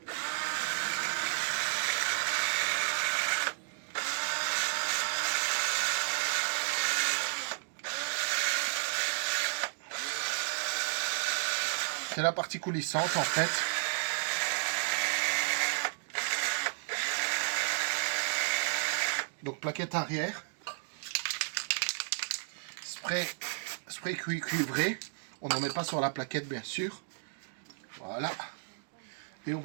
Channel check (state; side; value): silent; left; digital silence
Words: C'est la partie coulissante en fait. Donc plaquette arrière. Spray cuivré. On n'en met pas sur la plaquette bien sûr. Voilà. Et on